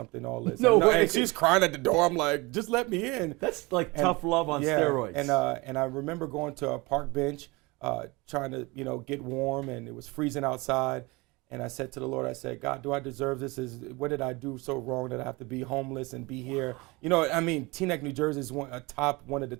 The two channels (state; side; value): quieter; left; 24.7 dB